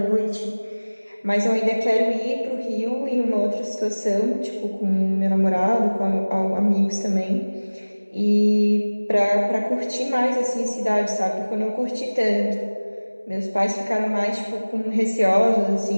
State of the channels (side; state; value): both; inverted; correlation -1.00